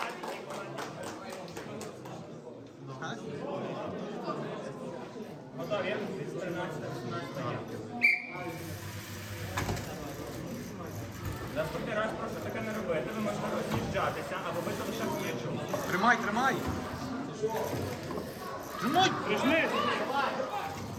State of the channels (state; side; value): identical; both; correlation 1.00